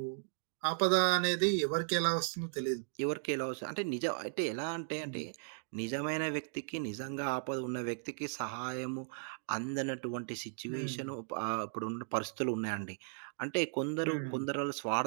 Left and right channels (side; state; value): left; silent; digital silence